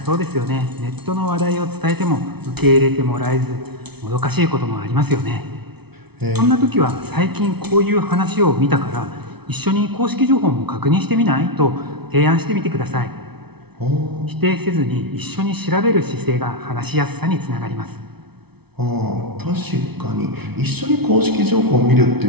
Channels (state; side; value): late; left; 0.98 ms